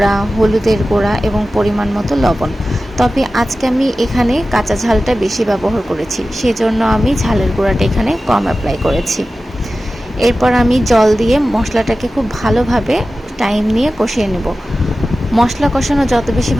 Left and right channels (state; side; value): normal; both; correlation 0.95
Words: হলুদের গুঁড়া এবং পরিমাণ মতো লবণ। তবে আজকে আমি এখানে কাঁচা ঝালটা বেশি ব্যবহার করেছি, সেজন্য আমি ঝালের গুঁড়াটা এখানে কম অ্যাপ্লাই করেছি। এরপর আমি জল দিয়ে মশলাটাকে খুব ভালোভাবে টাইম নিয়ে কষিয়ে নেব। মশলা কষানো যত বেশি